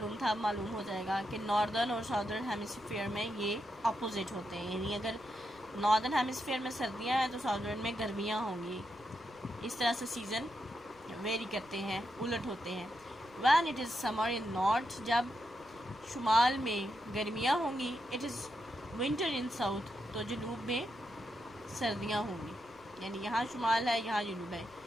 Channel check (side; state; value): left; noise; rumble, 28 dB below the sound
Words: था अब मालूम हो जाएगा, कि नॉर्दर्न और साउदर्न हेमिस्फीयर में ये अपोजिट होते हैं, यानी अगर नॉर्दर्न हेमिस्फीयर में सर्दियां हैं तो साउदर्न में गर्मियां होंगी। इस तरह से सीज़न वेरी करते हैं, उलट होते हैं। When it is summer in north, जब शुमाल में गर्मियां होंगी, it is winter in south, तो जनूब में सर्दियां होंगी, यानी यहाँ शुमाल है यहाँ जनूब है,